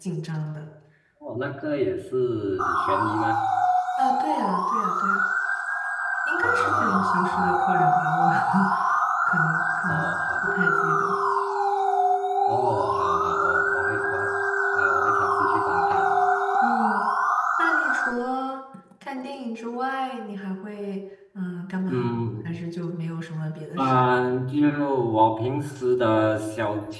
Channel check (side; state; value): both; identical; correlation 1.00